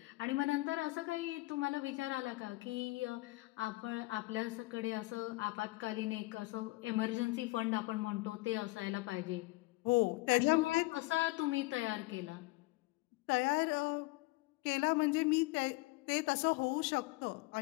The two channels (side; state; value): right; quieter; 22.0 dB